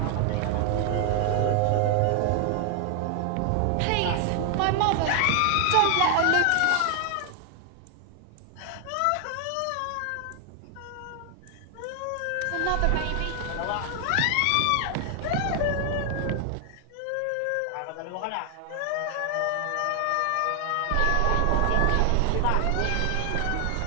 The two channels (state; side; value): different; both; correlation 0.00